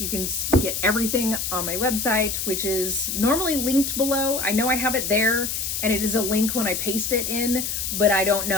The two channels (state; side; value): noise; left; hiss, 2 dB below the sound